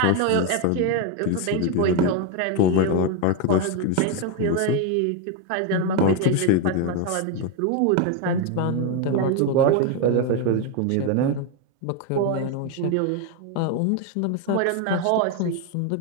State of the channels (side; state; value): both; different; correlation 0.01